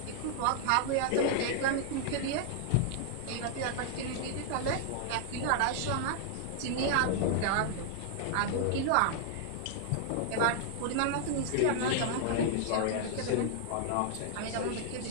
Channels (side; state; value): both; different; correlation -0.01